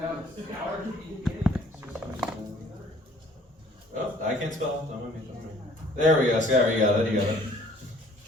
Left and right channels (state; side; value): normal; both; correlation 0.55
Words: Oh, I can't spell. Don't mind me. There we go. Scott, you got it. You got it.